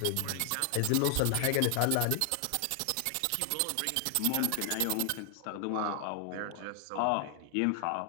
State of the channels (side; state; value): both; different; correlation 0.00